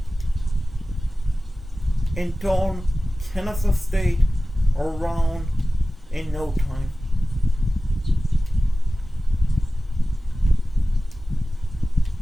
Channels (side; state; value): both; normal; correlation 0.96